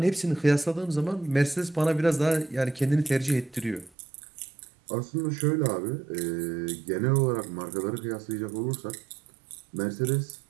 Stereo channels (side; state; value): left; drops out; at 3.9 s